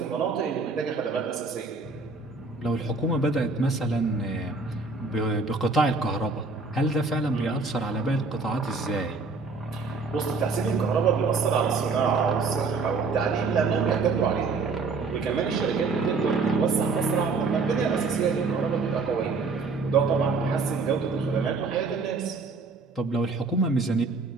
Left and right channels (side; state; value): left; quieter; 4.1 dB